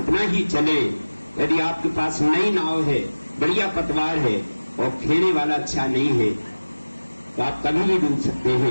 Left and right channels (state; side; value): inverted; both; correlation -1.00